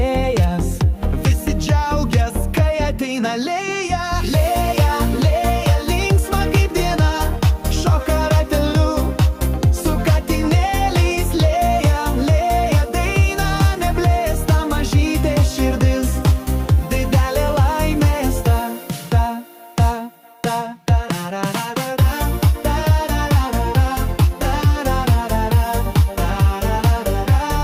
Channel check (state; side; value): identical; both; correlation 1.00